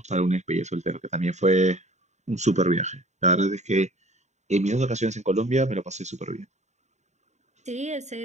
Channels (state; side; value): late; left; 0.34 ms